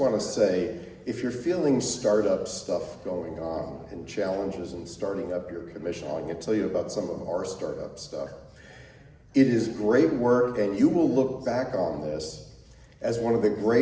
to say, if you're feeling startup stuff going on and challenges in starting up your commission, I'm going to tell you about some of our startup stuff. It is great work, and you will look back on this as one of the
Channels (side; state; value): both; identical; correlation 1.00